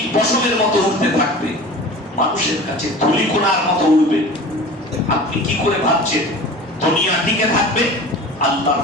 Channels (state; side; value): normal; both; correlation 0.38